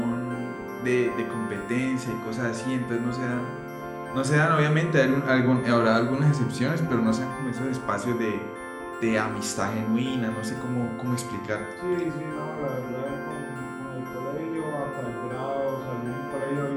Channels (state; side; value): identical; both; correlation 1.00